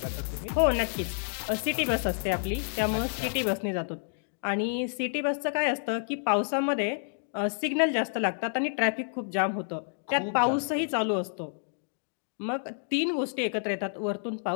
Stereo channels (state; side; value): silent; right; digital silence